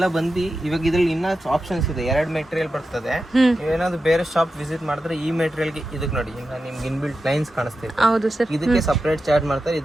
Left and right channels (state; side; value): normal; both; correlation 0.91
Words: ಬಂದು ಇವಾಗ ಇದ್ರಲ್ಲಿ ಇನ್ನ ಆಪ್ಷನ್ಸ್ ಇದೆ. 2 ಮೆಟೀರಿಯಲ್ ಬರ್ತದೆ. ನೀವೇನಾದ್ರು ಬೇರೆ ಶಾಪ್ ವಿಸಿಟ್ ಮಾಡಿದ್ರೆ ಈ ಮೆಟೀರಿಯಲ್ ಗೆ ಇದಕ್ಕೆ ನೋಡಿ ನಿಮ್ಗೆ ಇನ್ಬಿಲ್ಟ್ ಲೈನ್ಸ್ ಕಾಣಿಸ್ತಿದೆ. ಹೌದು ಸರ್. ಇದಕ್ಕೆ ಸಪರೇಟ್ ಚಾರ್ಜ್ ಮಾಡ್ತಾರೆ,